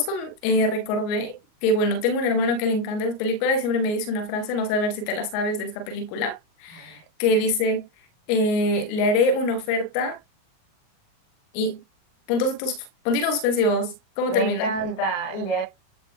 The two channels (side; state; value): right; late; 38 ms